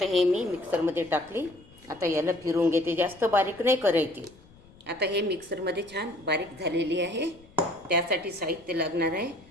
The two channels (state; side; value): noise; left; rumble, 25 dB below the sound